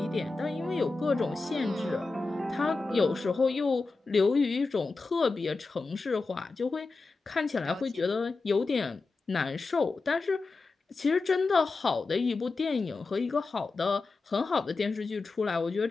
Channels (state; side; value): quieter; right; 3.8 dB